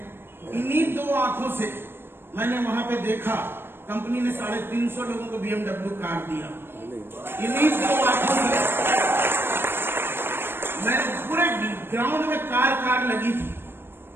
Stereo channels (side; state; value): left; late; 0.11 ms